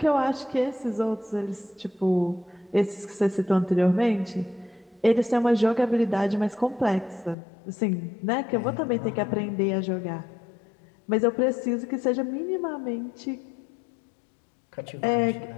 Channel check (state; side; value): drops out; right; at 7.4 s